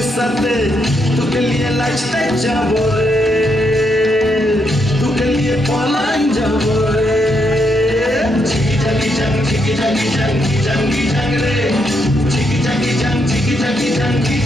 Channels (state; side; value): normal; both; correlation 0.78